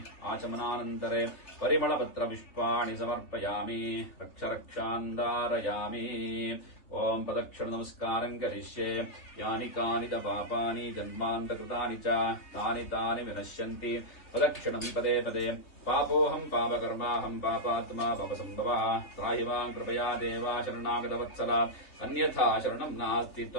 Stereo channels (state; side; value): late; right; 3.4 ms